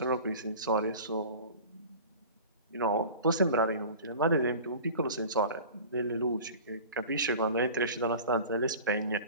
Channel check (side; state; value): both; inverted; correlation -0.39